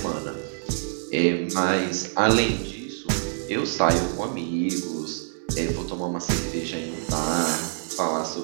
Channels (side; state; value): left; silent; 61 dB below the other